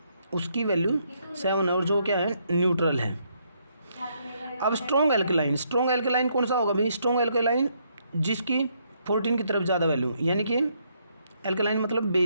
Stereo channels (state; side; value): inverted; both; correlation -0.73